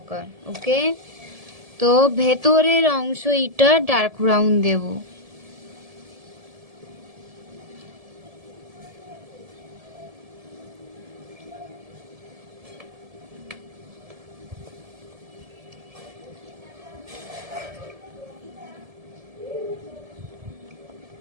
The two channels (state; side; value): late; left; 1.7 ms